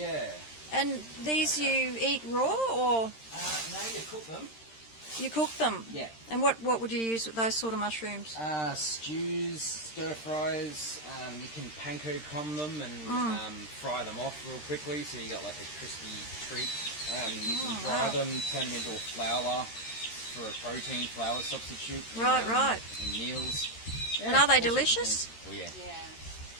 And these you eat raw, or? No, you cook them. You cook them? Yeah. And what would you use with those sort of mushrooms? Stews, stir fries, you can panko crumb them and fry them off real quickly so you got like a crispy treat. You can dry them, turn them into a flour for a protein flour substitute. Right. In meals. Yeah, and are they delicious? Oh yeah.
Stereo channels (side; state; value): right; late; 13 ms